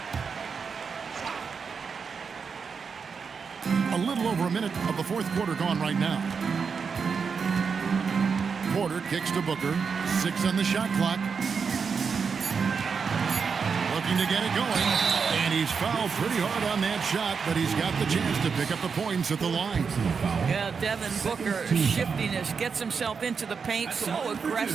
A little over a minute of the fourth quarter gone right now. Porter kicks to Booker. 6 on the shot clock. Looking to get it going. And he's fouled pretty hard on that shot, but he's got the chance to pick up the points at the line. Yeah, Devin Booker, shiftiness, gets himself into the paint, so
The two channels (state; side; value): quieter; left; 5.7 dB